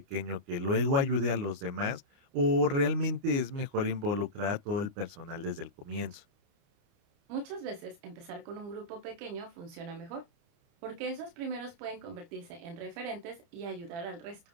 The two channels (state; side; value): late; left; 29 ms